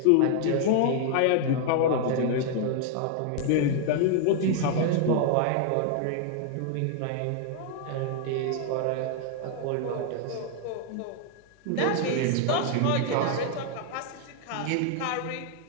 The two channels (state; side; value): different; both; correlation 0.00